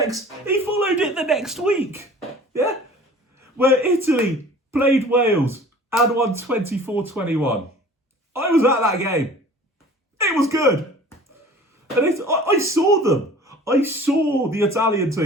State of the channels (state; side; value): normal; both; correlation 0.45